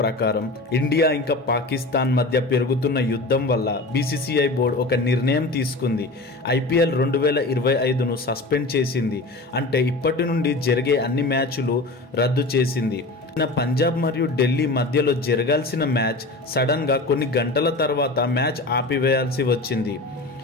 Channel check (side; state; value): right; quieter; 3.0 dB